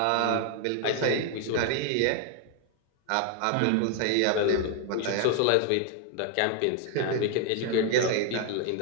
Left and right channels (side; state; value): both; different; correlation 0.01